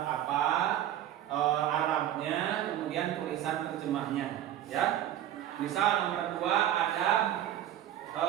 apa, Arabnya, kemudian tulisan terjemahnya ya. Misal nomor 2 adab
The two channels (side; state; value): left; quieter; 11.8 dB